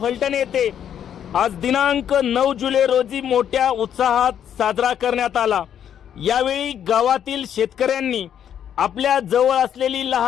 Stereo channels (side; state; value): right; quieter; 9.4 dB